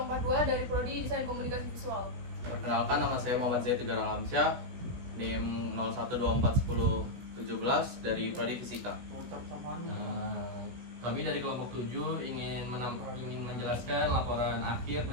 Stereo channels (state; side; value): late; left; 16 ms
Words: dari Prodi Desain Komunikasi Visual. Perkenalkan, nama saya Muhammad Zaid Tegar Alamsyah, NIM 01241017 dari Prodi Fisika. Kami dari kelompok 7 ingin menjelaskan laporan akhir